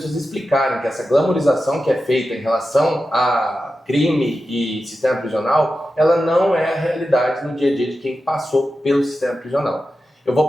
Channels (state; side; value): normal; both; correlation 0.91